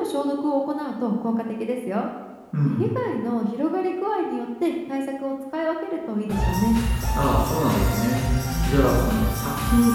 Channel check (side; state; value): both; identical; correlation 1.00